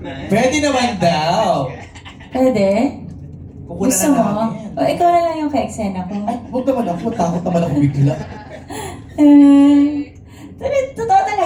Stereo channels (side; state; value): both; identical; correlation 1.00